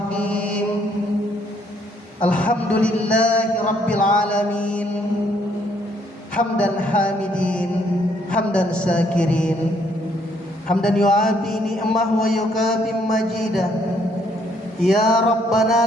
Alhamdulillahi rabbil alamin. Hamdan hamidin, hamdan syakirin, hamdan yu'afi ni'mah wa yukafi majidah. Ya Rabbana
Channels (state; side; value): normal; both; correlation 0.68